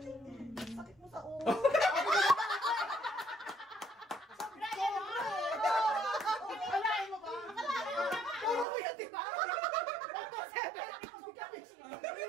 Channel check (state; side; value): drops out; left; at 8.7 s